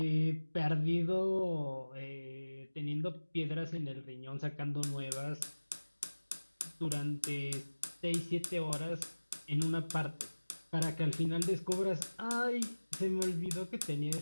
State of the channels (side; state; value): both; inverted; correlation -1.00